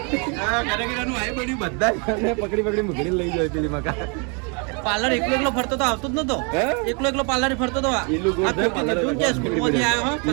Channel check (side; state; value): left; quieter; 34.9 dB